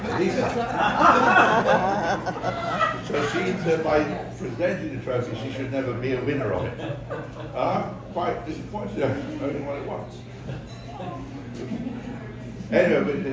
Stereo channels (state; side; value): identical; both; correlation 1.00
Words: Lisa. So she said by presenting the trophy, she should never be a winner of it. I'm quite disappointed, I've only won it once. Anyway,